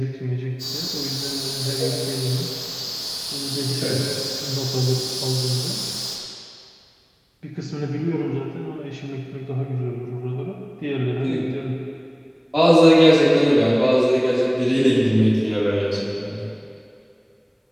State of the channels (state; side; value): identical; both; correlation 1.00